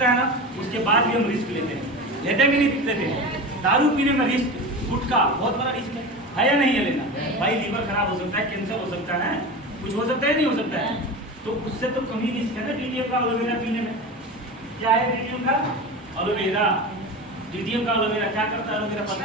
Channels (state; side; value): normal; both; correlation 0.28